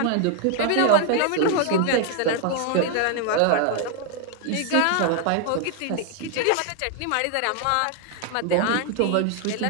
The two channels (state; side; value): different; both; correlation 0.00